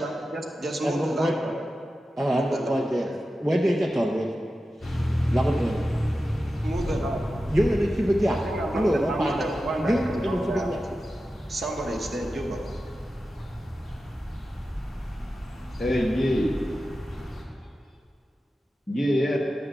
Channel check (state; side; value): normal; both; correlation 0.93